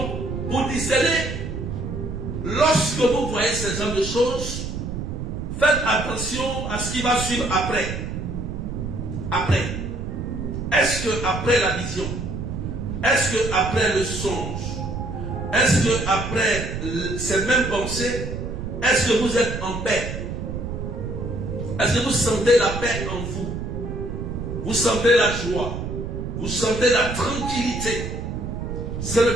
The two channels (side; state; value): right; noise; rumble, 5 dB below the sound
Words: pour discerner, lorsque vous voyez ce genre de choses, faites attention à ce qui va suivre après. Après. Est-ce que après la vision? Est-ce que après le songe? Est-ce que après ces mêmes pensées, est-ce que vous êtes en paix? Est-ce que vous sentez la paix en vous? Vous sentez la joie? Vous sentez la tranquillité? C'est le